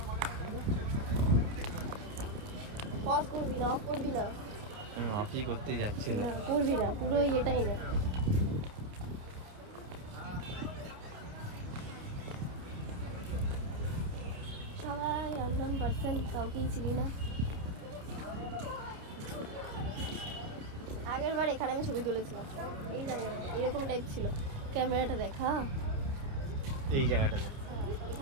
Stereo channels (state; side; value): late; left; 29 ms